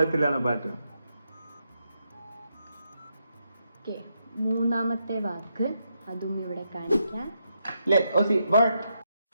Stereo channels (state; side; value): inverted; both; correlation -0.82